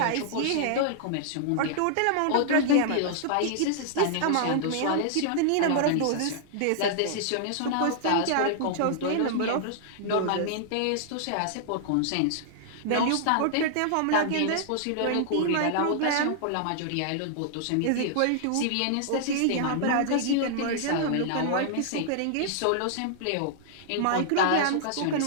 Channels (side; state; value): both; different; correlation -0.01